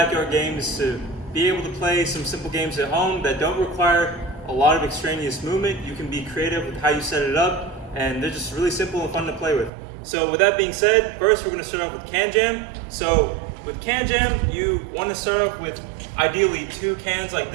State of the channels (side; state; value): left; drops out; at 9.7 s